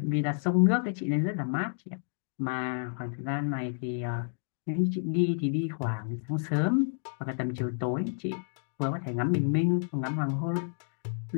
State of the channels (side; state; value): right; silent; digital silence